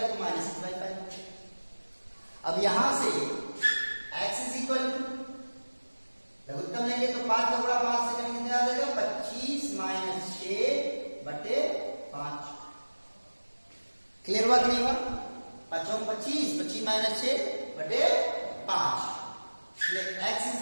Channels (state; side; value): inverted; both; correlation -1.00